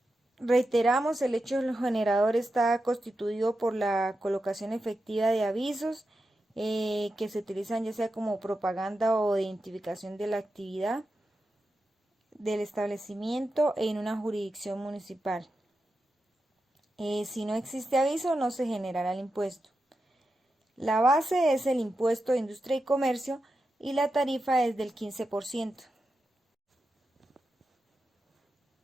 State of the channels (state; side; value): normal; both; correlation 0.89